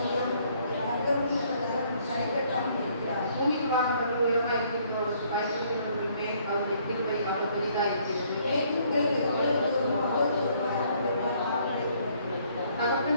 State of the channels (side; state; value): both; inverted; correlation -0.64